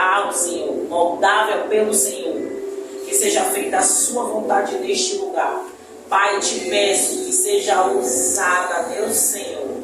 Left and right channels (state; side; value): identical; both; correlation 1.00